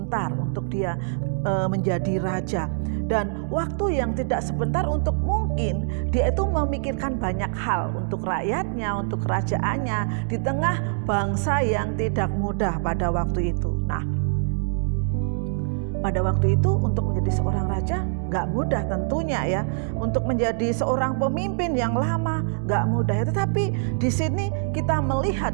untuk dia menjadi raja. Dan waktu yang tidak sebentar untuk mungkin dia itu memikirkan banyak hal untuk rakyatnya, untuk kerajaannya di tengah bangsa yang tidak mudah pada waktu itu. Nah, pada waktu itu untuk menjadi seorang raja gak mudah tentunya ya. Untuk menjadi seorang pemimpin yang lama gak mudah ya. Tetapi di sini kita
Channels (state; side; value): silent; left; digital silence